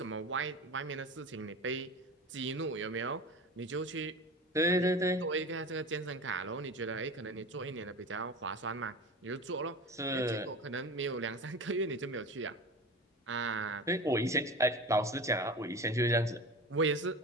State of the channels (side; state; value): both; normal; correlation 0.32